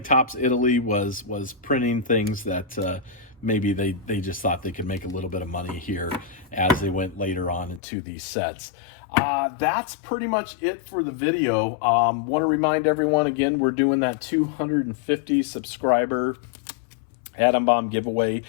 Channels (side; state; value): right; drops out; at 7.8 s